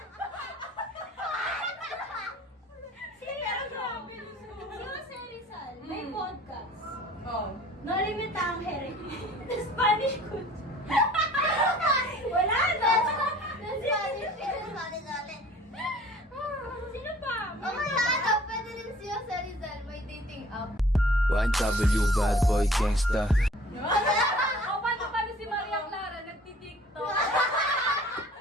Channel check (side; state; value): both; normal; correlation 0.51